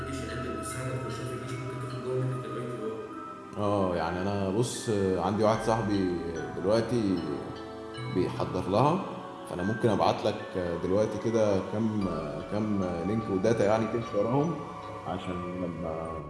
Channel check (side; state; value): both; identical; correlation 1.00